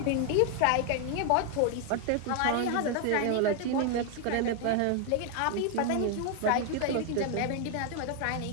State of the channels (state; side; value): different; both; correlation 0.00